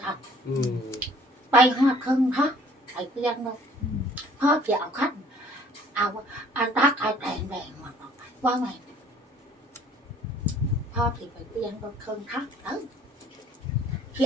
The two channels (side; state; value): both; normal; correlation 0.56